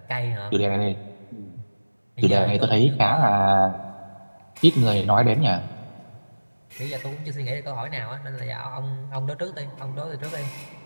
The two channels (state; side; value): inverted; both; correlation -1.00